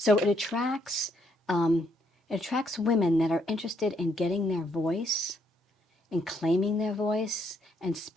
it attracts women that are interested in getting their voice, and claiming their voice, and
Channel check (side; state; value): both; normal; correlation 0.72